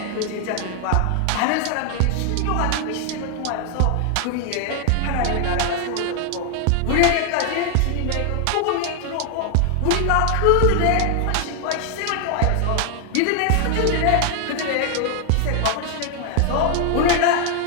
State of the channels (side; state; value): both; different; correlation 0.00